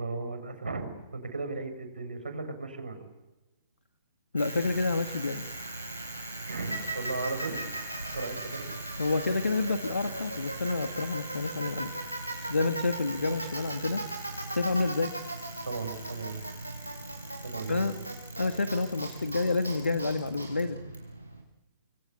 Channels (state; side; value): inverted; both; correlation -0.79